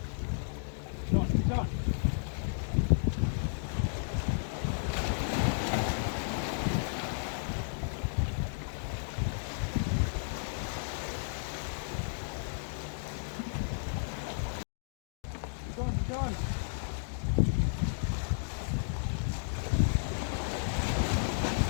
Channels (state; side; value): silent; right; digital silence